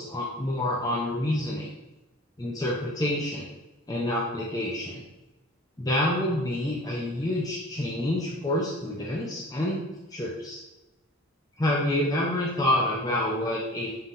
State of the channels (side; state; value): both; normal; correlation 0.43